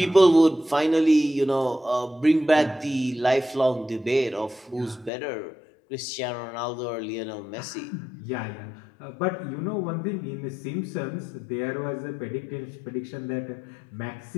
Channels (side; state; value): right; drops out; at 5.1 s